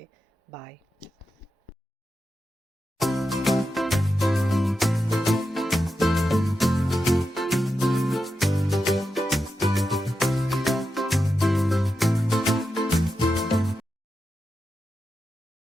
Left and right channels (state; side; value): normal; both; correlation 0.89